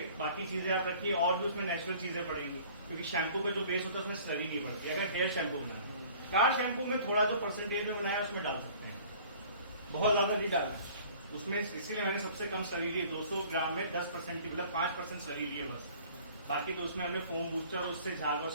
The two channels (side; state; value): both; inverted; correlation -0.50